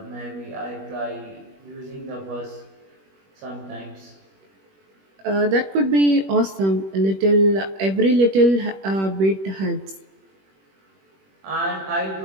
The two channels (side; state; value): left; late; 21 ms